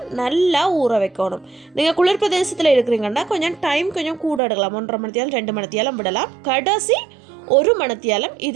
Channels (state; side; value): drops out; left; at 4.4 s